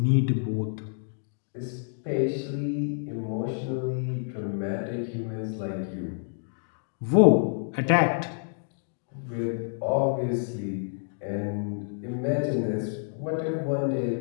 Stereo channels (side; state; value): right; silent; digital silence